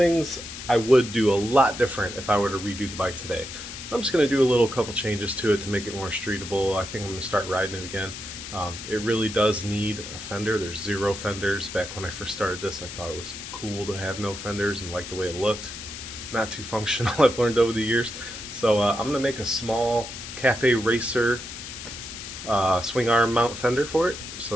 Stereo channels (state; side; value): noise; left; hiss, 10 dB below the sound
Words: I would do a lot different if I were to redo the bike today. I'm just going to do a couple changes to it to make it more streetable. I think I'm going to start riding it again. It really does need a fender. There's 0 fenders. Back when I first started this, I thought it was cool to have no fenders and like the way it looked. Not too functional, I've learned over the years. So I'm going to make a small Cafe Racer swing arm mount fender for it.